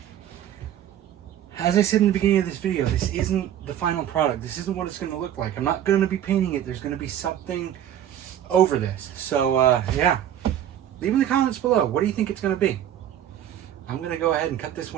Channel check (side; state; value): left; quieter; 10.8 dB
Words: As I said in the beginning of this video, this isn't the final product. This isn't what it's going to look like. I'm not going to be painting it. There's going to be something over this. So yeah, leave in the comments below. What do you think it's going to be? I'm going to go ahead and cut this